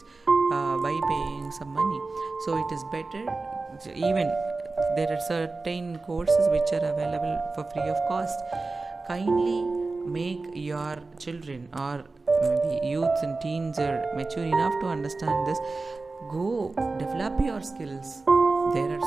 by paying some money. So it is better. Even there are certain courses which are available for free of cost. Kindly make your children, or maybe youths and teens, are mature enough to understand this. Go develop your skills. There are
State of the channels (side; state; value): left; quieter; 3.6 dB